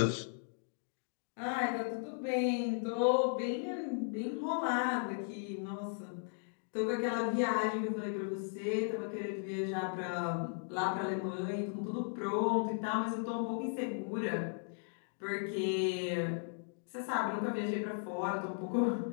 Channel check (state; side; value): silent; right; digital silence